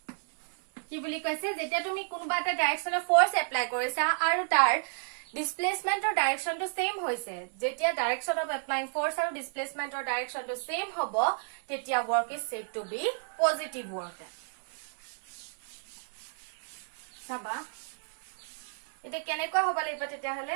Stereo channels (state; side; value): silent; left; 57 dB below the other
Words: কি বুলি কৈছে যেতিয়া তুমি কোনবা এটা ডাইৰেকশনৰ ফোৰ্স এপ্লাই কৰিছা আৰু তাৰ ডিসপ্লেসমেন্টৰ ডাইৰেকশনটো সেম হৈছে যেতিয়া ডাইৰেকশন অফ এপ্লাইং ফোৰ্স আৰু ডিসপ্লেসমেন্টৰ ডাইৰেকশনটো সেম হ'ব তেতিয়া work is said to be positive work সাবা এটা কেনেকৈ হ'ব লাগিব তেতিয়াহলে